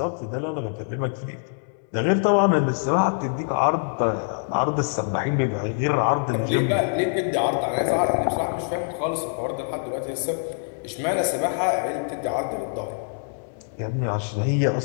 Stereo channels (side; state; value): right; silent; 60 dB below the other